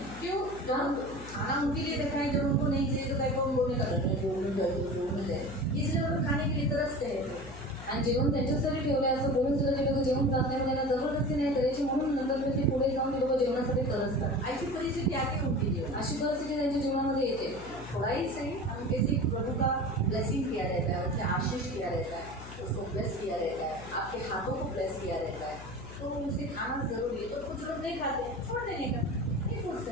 क्यों? जब खाना उनके लिए रखा है, जब उनको नहीं चाहिए तो कहीं को बोलने का डर है, बोलने जाए, इसलिए वो लोग खाने के लिए तरसते हैं. आणि जेवण त्यांच्यासाठी ठेवलं असं बोलून सुद्धा ते लोक जेवण जात नाही, त्यांना जबरदस्ती नाही करायची, म्हणून नंतर ते पुढे जाऊन ते लोक जेवणासाठी तरसतात। ऐसी परिस्थिति आती है उनके जीवन. अशी परिस्थिती त्यांच्या जीवनामध्ये येते। थोड़ा ही सही हम किसी प्रभु का ब्लेसिंग किया रहता है, उसे आशीष किया रहता है, उसको ब्लेस किया रहता है, आपके हाथों को ब्लेस किया रहता है, तो उसे खाना जरूरी है. तो कुछ लोग नहीं खाते, छोड़ देने का, नहीं फोर्स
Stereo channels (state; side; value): noise; left; hum, 13 dB below the sound